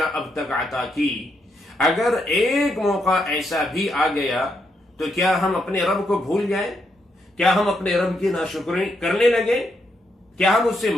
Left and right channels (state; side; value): normal; both; correlation 0.79